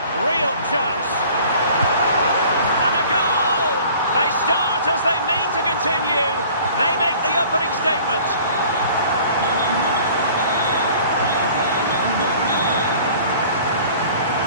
Real chance. They start as they mean to continue. They make the opening statement.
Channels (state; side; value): inverted; both; correlation -0.49